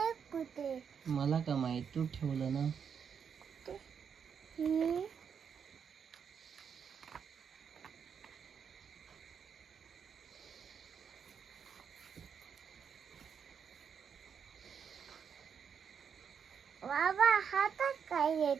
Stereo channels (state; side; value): quieter; left; 7.1 dB